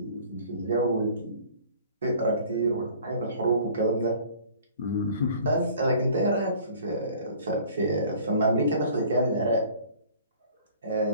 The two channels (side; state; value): both; inverted; correlation -0.50